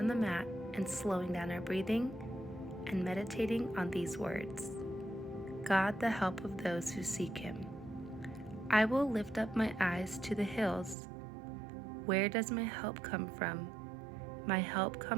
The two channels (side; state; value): left; drops out; at 11.0 s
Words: the mat and slowing down our breathing and meditating on these words. God, the help of those who seek Him. I will lift up my eyes to the hills. Where does my help come from? My help